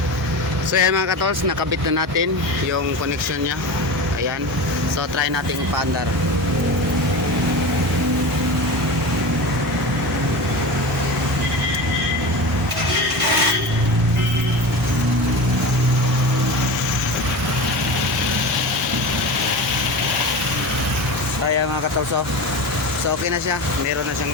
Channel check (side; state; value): both; normal; correlation 0.28